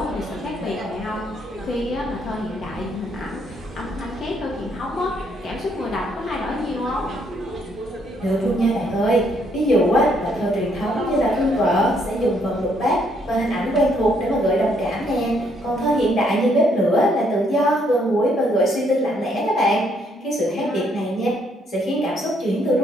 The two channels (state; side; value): normal; both; correlation 0.70